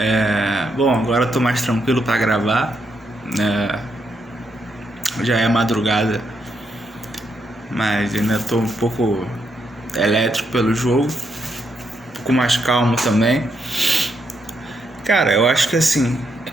Bom, agora eu tô mais tranquilo pra gravar. Já é madrugada, mas ainda tô um pouco elétrico pelo jogo, um pouco mais calmo também. Cara, eu acho que assim,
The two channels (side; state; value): both; normal; correlation 0.79